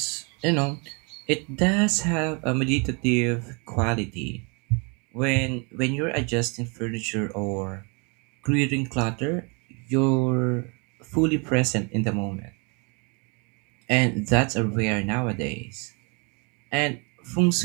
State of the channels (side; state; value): left; quieter; 33.0 dB